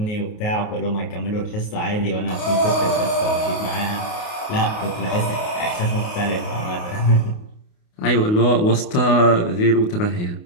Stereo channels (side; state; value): right; late; 28 ms